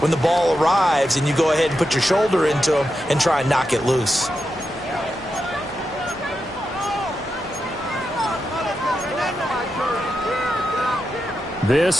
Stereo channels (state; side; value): normal; both; correlation 0.87